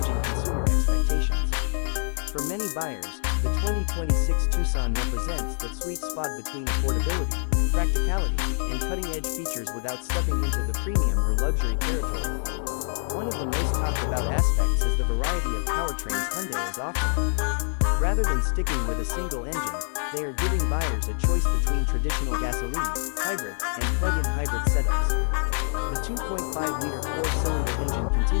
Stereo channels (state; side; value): silent; right; 61 dB below the other